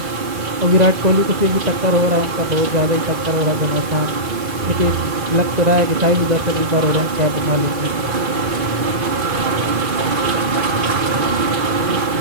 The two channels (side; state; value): left; late; 2.4 ms